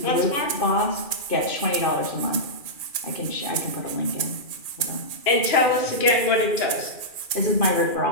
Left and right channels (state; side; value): late; right; 2.4 ms